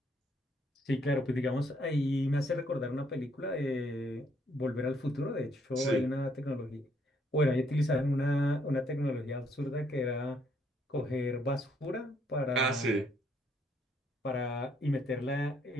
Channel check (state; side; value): normal; both; correlation 0.69